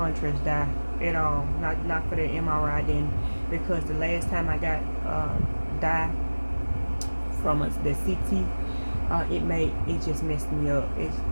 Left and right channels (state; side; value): inverted; both; correlation -1.00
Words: dye at all. Not for the MRI. I didn't, because the last time I got dye from the CT, it just messed me up. It